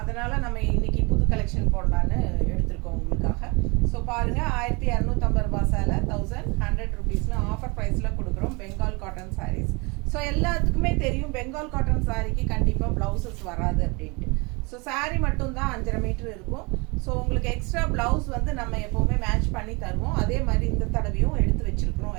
நம்ம இன்னைக்கு புது கலெக்ஷன் போடலான்னு எடுத்திருக்கோம் உங்களுக்காக. ஸோ பாருங்கள், 1250 ரூபா சேலை 1100 ருபீஸ்னு ஆஃபர் ப்ரைஸில் கொடுக்குறோம் பெங்கால் காட்டன் சாரீஸ். ஸோ எல்லாத்துக்குமே தெரியும் பெங்கால் காட்டன் சாரீக்கு கண்டிப்பாக ப்ளவுசஸ் வராது அப்படின்ட்டு. ஸோ சாரீ மட்டும்தான் 5.5 மீட்டர் இருக்கும். ஸோ உங்களுக்கு எக்ஸ்ட்ரா ப்ளவுஸ் வந்து நம்ம எப்போவுமே மேட்ச் பண்ணி தருவோம். அதே மாதிரி இந்த தடவையும் எடுத்து வச்சுருக்கிறோம்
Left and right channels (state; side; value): quieter; left; 28.3 dB